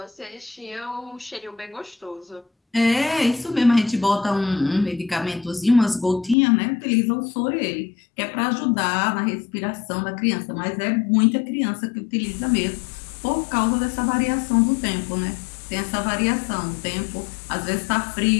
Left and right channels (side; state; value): right; drops out; at 6.4 s